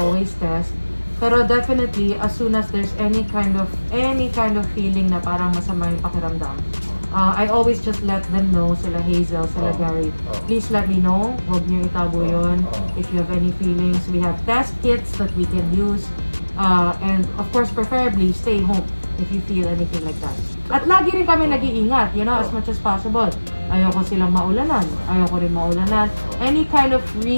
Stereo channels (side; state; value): both; inverted; correlation -1.00